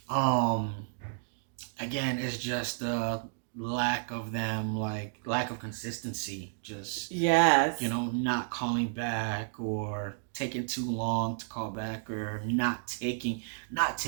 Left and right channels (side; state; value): left; silent; digital silence